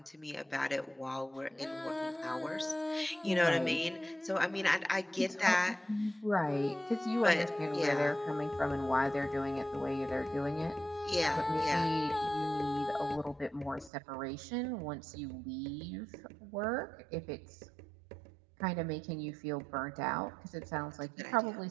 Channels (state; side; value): drops out; left; at 13.9 s